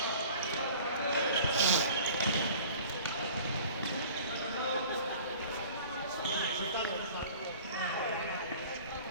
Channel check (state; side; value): inverted; both; correlation -0.45